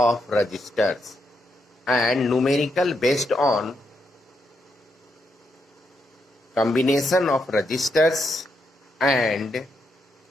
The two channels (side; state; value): both; normal; correlation 0.81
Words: resistors, and numerical based on combination of resistors and